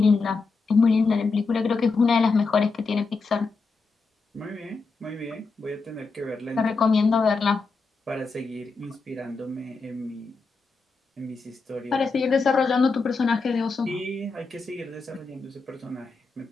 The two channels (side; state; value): right; quieter; 4.2 dB